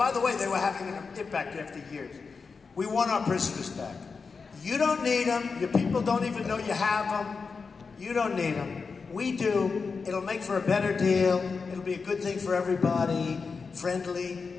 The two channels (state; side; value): quieter; right; 4.9 dB